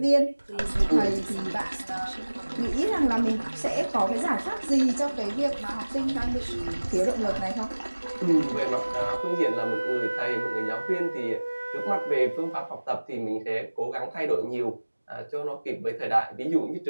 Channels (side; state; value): both; inverted; correlation -1.00